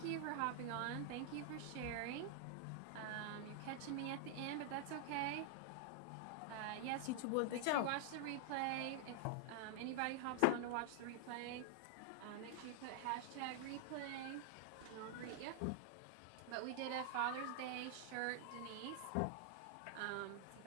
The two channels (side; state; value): both; different; correlation 0.00